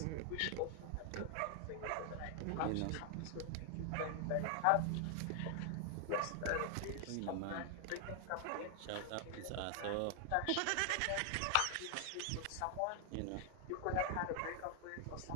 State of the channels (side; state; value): both; different; correlation 0.00